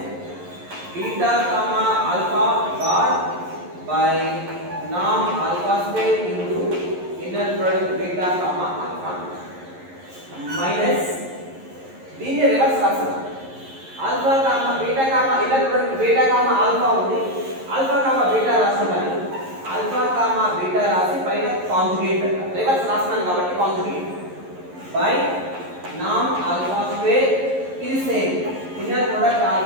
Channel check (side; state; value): left; late; 11 ms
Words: beta comma alpha bar by norm alpha square into inner product beta comma alpha minus దీన్ని reverse రాస్తాం alpha comma beta comma inner product beta comma alpha ఉంది alpha comma beta రాస్తున్నాను alpha comma beta రాసి పైన conjugate reverse రాస్తున్నాను కాబట్టి conjugate by నామ్ alpha square ఇది same inner product